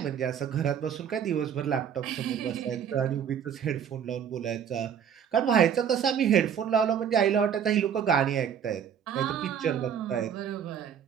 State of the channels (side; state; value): left; quieter; 8.3 dB